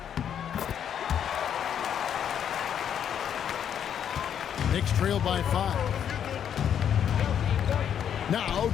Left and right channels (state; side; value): quieter; right; 8.9 dB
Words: Knicks trail by 5. Now